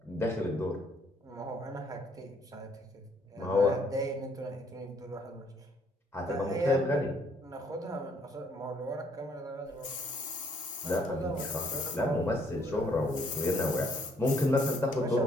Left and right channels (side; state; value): both; normal; correlation 0.65